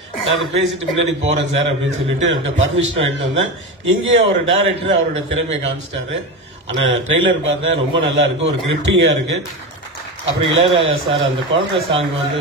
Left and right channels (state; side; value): normal; both; correlation 0.21